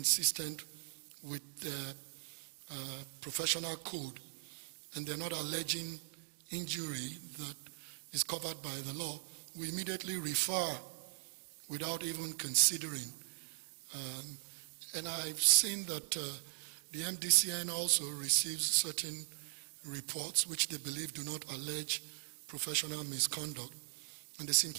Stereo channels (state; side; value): silent; left; digital silence